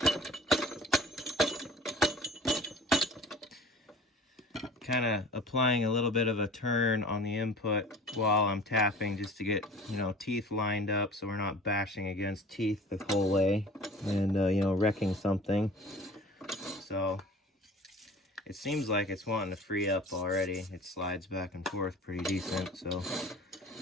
Kind of applying a little bit of a turn on the input while I'm tapping just to get, you know, teeth lined up so we're not bashing against teeth the whole way and, you know, wrecking something. So it seems like it's wanting to free up already. It slides back and forth pretty decent, so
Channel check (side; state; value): both; normal; correlation 0.43